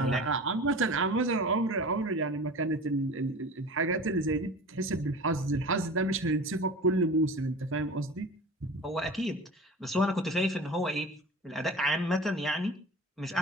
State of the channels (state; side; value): normal; both; correlation 0.36